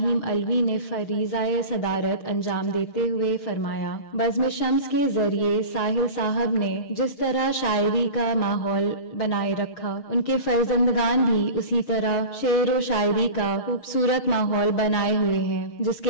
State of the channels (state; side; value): late; right; 6.6 ms